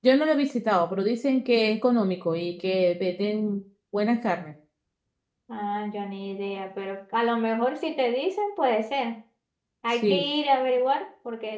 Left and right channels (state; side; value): identical; both; correlation 1.00